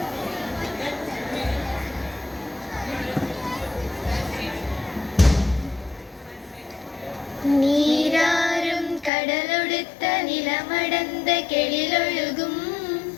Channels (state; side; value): drops out; right; at 9.1 s